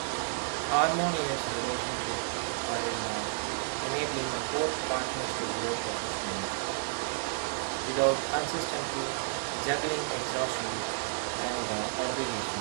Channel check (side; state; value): left; quieter; 38.6 dB